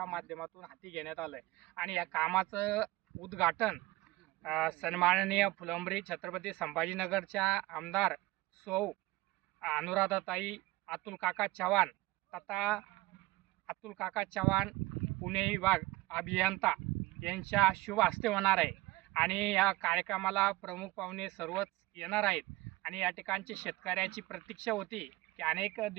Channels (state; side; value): quieter; left; 19.8 dB